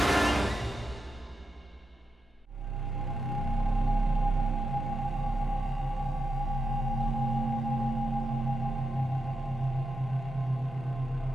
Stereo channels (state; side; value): normal; both; correlation 0.86